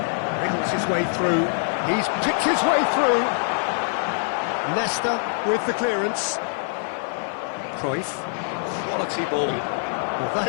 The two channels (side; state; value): right; silent; 60 dB below the other